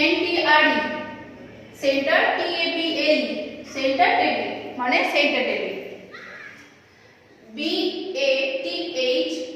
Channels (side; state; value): both; identical; correlation 1.00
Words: N T R E, centre, T A B L E, centre table মানে centre table. B A T H